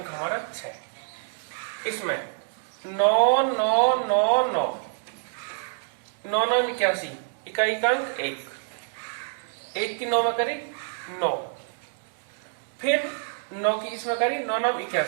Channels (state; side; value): silent; left; digital silence